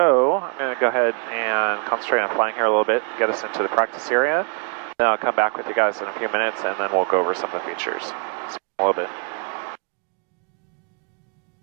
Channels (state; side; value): quieter; left; 39.5 dB